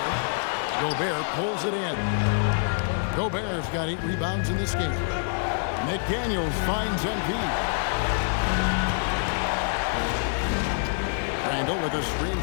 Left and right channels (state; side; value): silent; right; 61 dB below the other